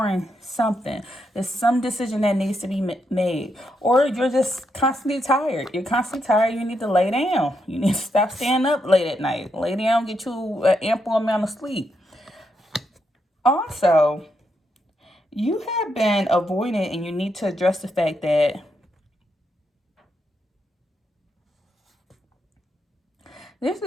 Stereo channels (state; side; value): normal; both; correlation 0.81